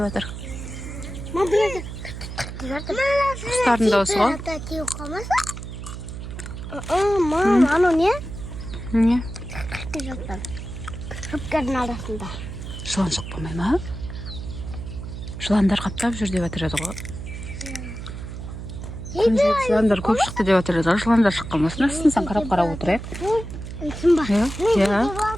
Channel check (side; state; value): right; noise; hum, 9 dB below the sound